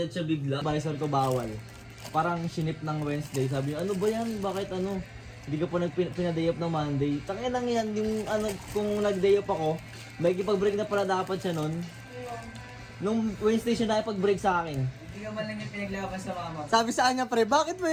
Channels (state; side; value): identical; both; correlation 1.00